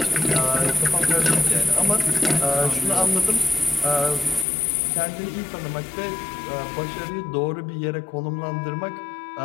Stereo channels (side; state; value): right; drops out; at 4.5 s